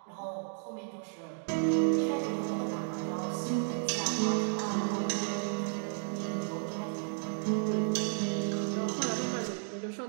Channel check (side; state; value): left; silent; 56 dB below the other